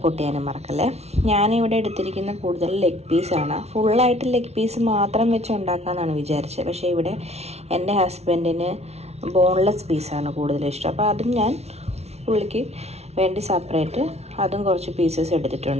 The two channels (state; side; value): late; left; 0.31 ms